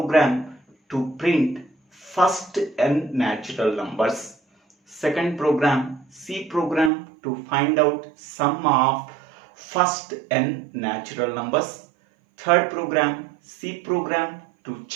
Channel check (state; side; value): drops out; left; at 6.9 s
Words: to print first n natural numbers. Second program, C program to find out sum of first n natural numbers. Third program, C program to